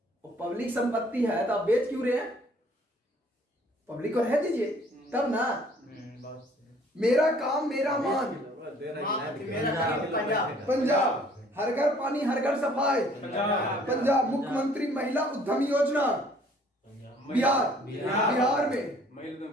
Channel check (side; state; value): both; normal; correlation 0.57